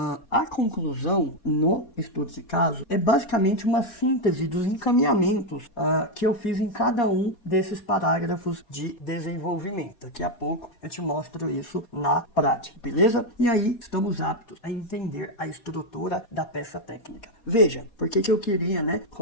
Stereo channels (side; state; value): right; late; 4.2 ms